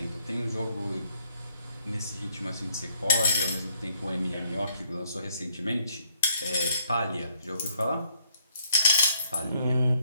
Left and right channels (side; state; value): both; inverted; correlation -0.68